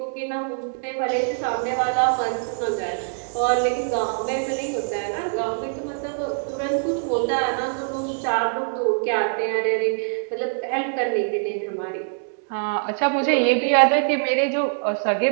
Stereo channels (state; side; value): silent; left; digital silence